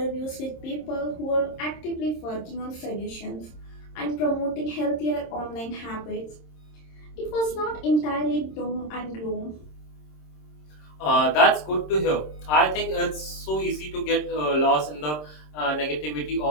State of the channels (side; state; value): right; late; 26 ms